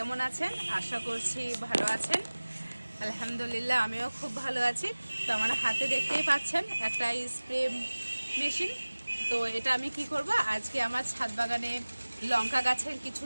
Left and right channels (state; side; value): inverted; both; correlation -1.00